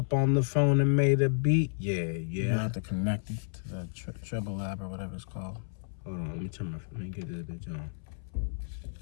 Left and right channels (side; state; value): right; silent; 57 dB below the other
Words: on the phone and made a beat. Yeah. You have to connect it to the treble lab or whatever it's called. Hold on, let me get this bitch on.